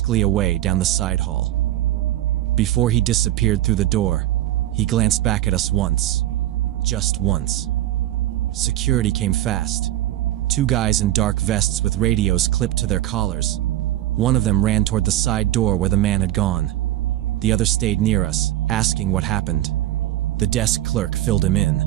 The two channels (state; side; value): quieter; left; 13.9 dB